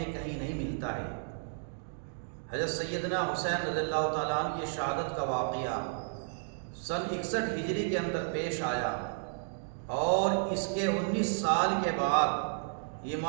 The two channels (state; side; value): silent; left; digital silence